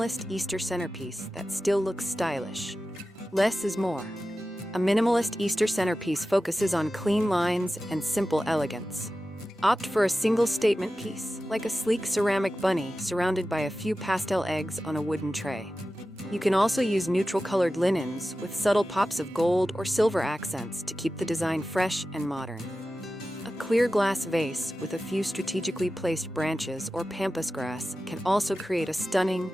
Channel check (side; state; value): both; normal; correlation 0.94